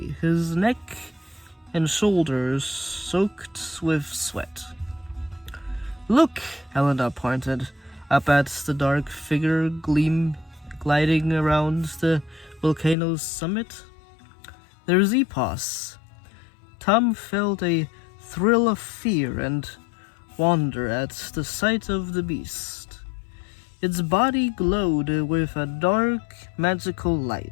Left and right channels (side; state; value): right; drops out; at 13.0 s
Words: his neck and shoulders soaked with sweat. "Look!" Elena pointed up at the dark figure gliding around the volcano's summit. "There's EPOS." Tom felt a thrill of fear and wonder at the sight of the beast. Its body glowed with a dark, magical